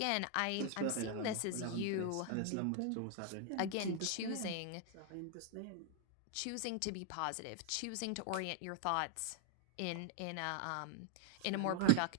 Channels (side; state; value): both; different; correlation 0.01